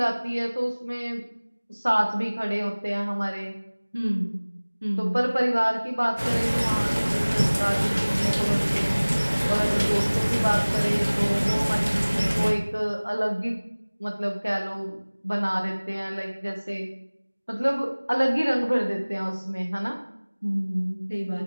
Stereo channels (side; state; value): both; inverted; correlation -1.00